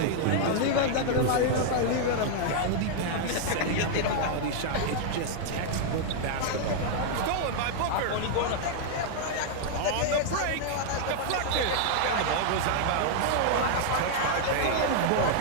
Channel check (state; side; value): different; both; correlation -0.01